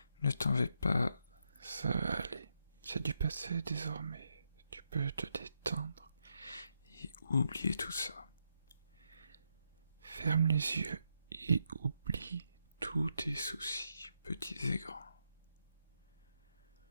Ne t'en vais pas, ça va aller. C'est du passé désormais. Tu peux te détendre et oublier tout ça. Ferme les yeux et oublie tous tes soucis, petits et grands.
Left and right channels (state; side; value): inverted; both; correlation -0.81